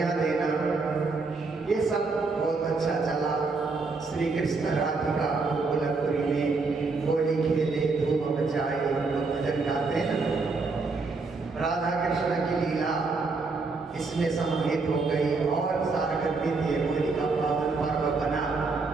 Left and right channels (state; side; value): quieter; left; 4.0 dB